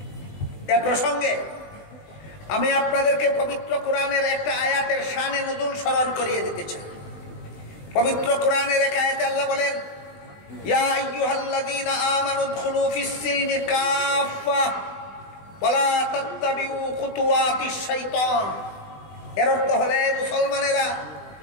এ প্রসঙ্গে আমি আপনাদেরকে পবিত্র কোরআনের একটা আয়াতের শানে নুজুল স্মরণ করিয়ে দিতে চাই। পবিত্র কোরআনের এক আয়াতে আল্লাহ বলেন, ইয়া আইয়ুহাল্লাযীনা আমানু উদখুলু ফিস-সিলমি কাফা ওয়ালা তাত্তাবিউ খুতুওয়াতিশ শাইতান। এর অর্থ হলে, মুসলমানেরা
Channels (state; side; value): late; right; 20 ms